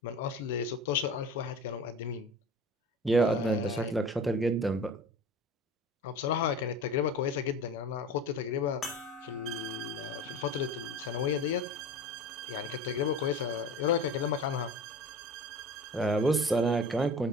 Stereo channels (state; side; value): normal; both; correlation 0.37